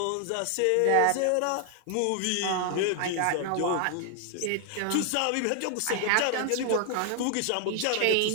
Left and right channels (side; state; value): both; different; correlation 0.00